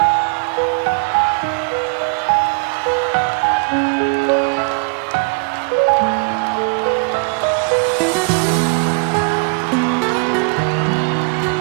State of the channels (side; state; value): left; quieter; 34.1 dB